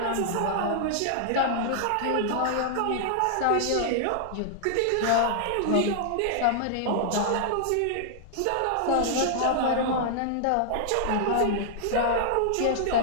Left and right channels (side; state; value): both; different; correlation -0.01